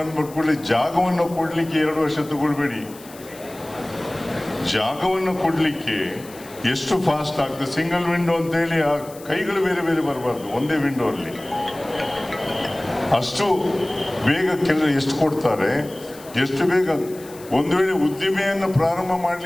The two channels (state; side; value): noise; left; hiss, 20 dB below the sound